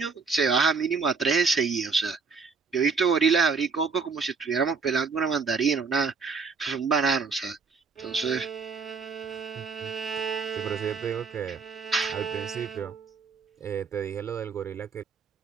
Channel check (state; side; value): quieter; left; 5.1 dB